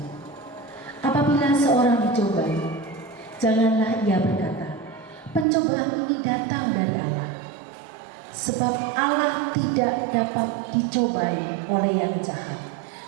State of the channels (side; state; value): left; drops out; at 5.5 s